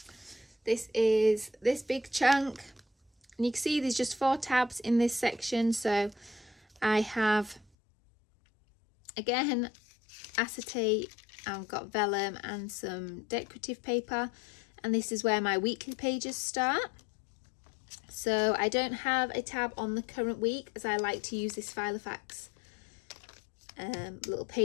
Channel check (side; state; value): right; drops out; at 7.7 s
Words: this is this big chunk, and you can see there's just 4 tabs in this section. So I have, again, acetate, I've got vellum and some decorative paper, and this is where my weekly pages start. So I don't have a tab on the current week, as I like to use this Filofax little